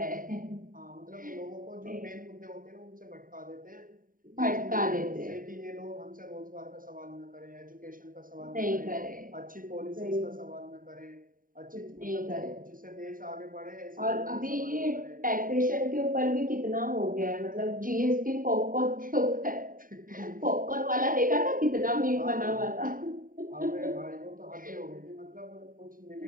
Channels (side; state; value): left; late; 0.40 ms